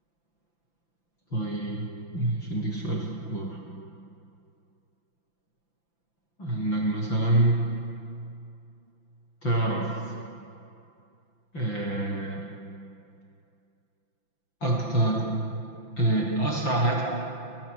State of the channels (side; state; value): right; late; 5.9 ms